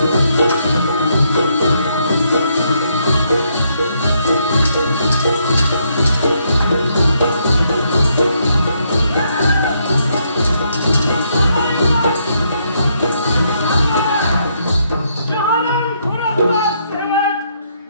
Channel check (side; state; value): both; inverted; correlation -0.74